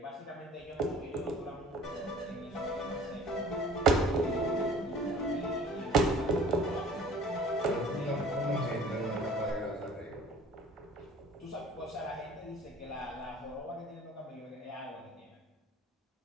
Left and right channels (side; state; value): both; normal; correlation 0.48